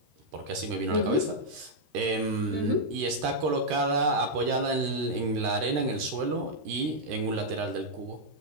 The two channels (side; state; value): left; late; 13 ms